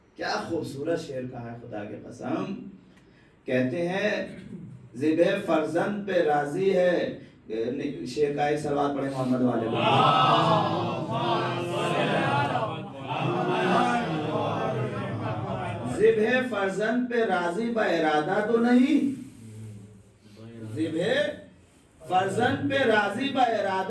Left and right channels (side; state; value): both; identical; correlation 1.00